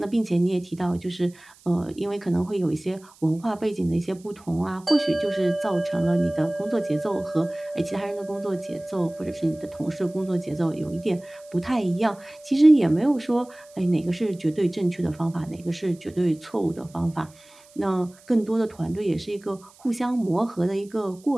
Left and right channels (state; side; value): noise; right; hiss, 26 dB below the sound